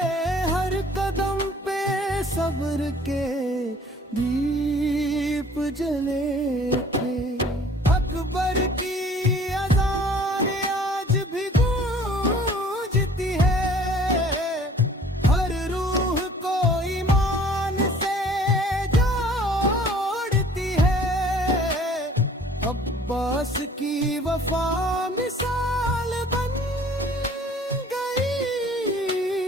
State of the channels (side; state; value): both; normal; correlation 0.52